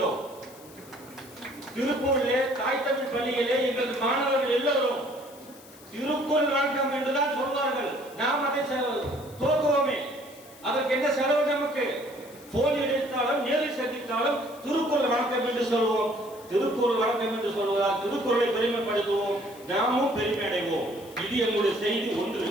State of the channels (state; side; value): noise; left; hiss, 22 dB below the sound